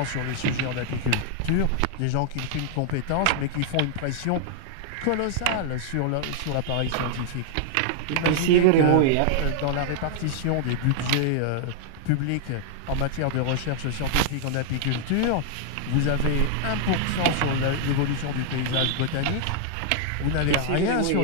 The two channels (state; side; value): different; both; correlation -0.01